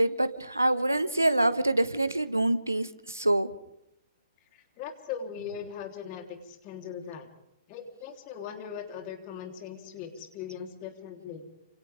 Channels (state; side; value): inverted; both; correlation -0.88